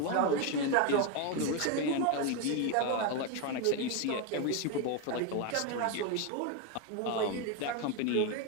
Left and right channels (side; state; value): both; different; correlation 0.02